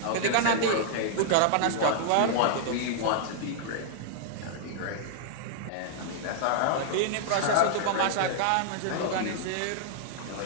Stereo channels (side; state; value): both; different; correlation -0.01